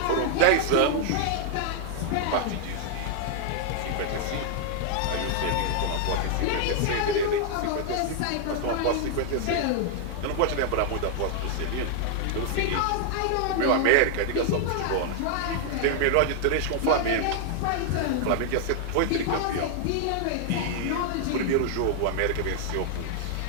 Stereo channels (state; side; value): different; both; correlation 0.00